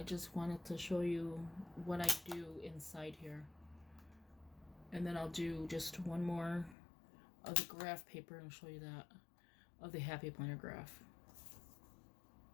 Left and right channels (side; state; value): right; drops out; at 6.8 s